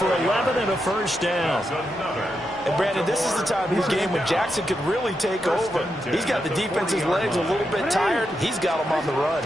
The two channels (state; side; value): normal; both; correlation 0.85